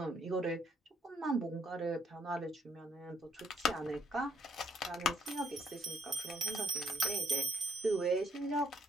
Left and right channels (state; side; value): normal; both; correlation 0.69